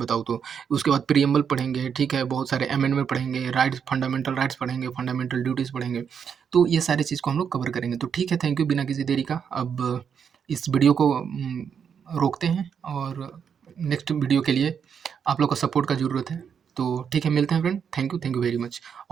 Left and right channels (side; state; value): left; quieter; 7.2 dB